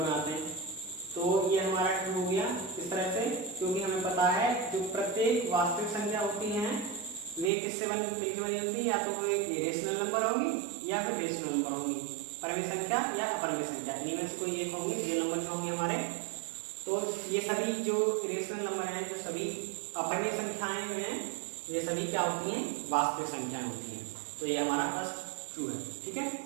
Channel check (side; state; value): left; drops out; at 7.5 s